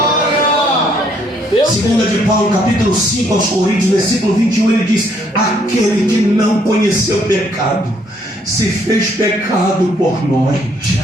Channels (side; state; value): both; normal; correlation 0.68